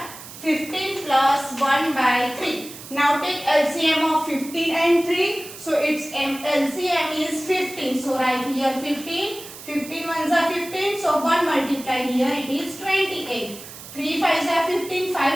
15 plus 1 by 3. Now take LCM of 15 and 3. So its LCM is 15. So write here 15. 15 ones are 15. So 1 multiplied here it is 28. 3 5s are 15.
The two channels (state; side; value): noise; right; hiss, 15 dB below the sound